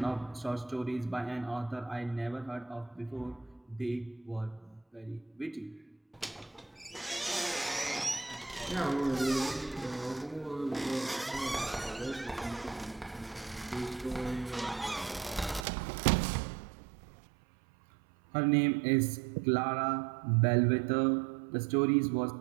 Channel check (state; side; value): drops out; left; at 15.7 s